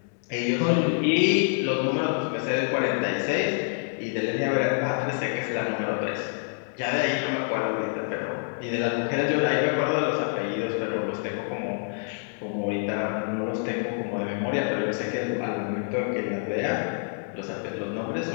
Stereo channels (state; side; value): silent; right; 56 dB below the other